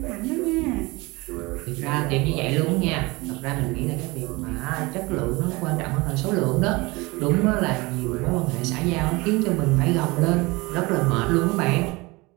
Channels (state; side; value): quieter; left; 23.7 dB